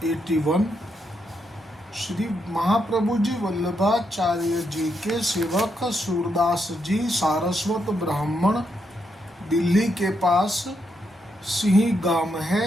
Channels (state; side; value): normal; both; correlation 0.80